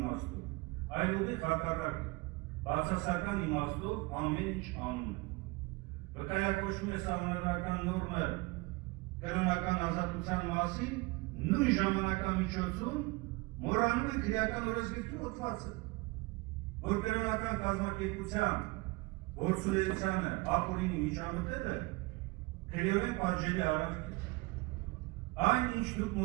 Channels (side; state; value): left; quieter; 24.2 dB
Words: այլ ուղիղ հակառակը, բացասական իմաստով ամեն ինչ անում են։ Վկայակոչվում է սահմանադրական նորմը կրոնական ազատության մասին, նույն ժամանակամիջոցում մոռանում են քրեական օրենսգրքի հոդվածը, որ կրոնական կազմակերպության գործունեությանը ապօրինի միջամտելը քրեորեն պատժելի արարք է։ Այն ինչ դուք